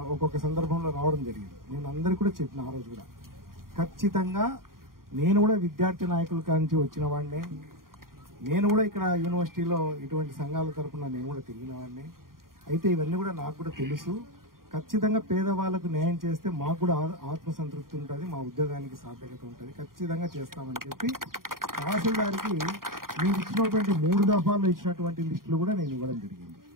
ఒక్కొక్క సందర్భంలో రావడం జరిగింది. నేను అందరికీ కూడా చెప్పిన ఆ రోజు కూడా ఖచ్చితంగా నేను కూడా విద్యార్థి నాయకుల కాంచి వచ్చిన వాడినే, నేను కూడా ఇక్కడ యూనివర్సిటీలో ఇటువంటి సంఘాల తరఫున నేను కూడా తిరిగిన వాడిని. అయితే ఇవన్నీ కూడా నాకు కూడా తెలుసు. ఖచ్చితంగా పేదవాళ్లకు న్యాయం చేస్తే మాకు కూడా ఆత్మసంతృప్తి ఉంటుంది, మా ఉద్యోగానికి సార్థకత ఉంటుంది, ఖచ్చితంగా చేస్తామని చెప్పి తహసీల్దార్కి మీరు ఇచ్చినటువంటి 3 దఫాల్లో ఇచ్చినటువంటి లిస్టులు కూడా నేను ఇవ్వడం జరిగింది.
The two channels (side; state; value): left; late; 0.91 ms